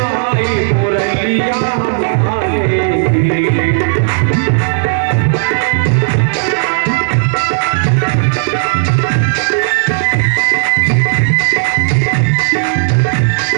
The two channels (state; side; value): silent; left; digital silence